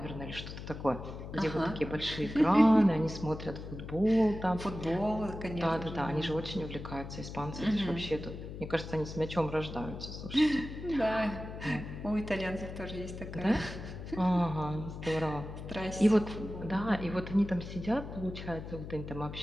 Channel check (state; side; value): noise; left; hum, 10 dB below the sound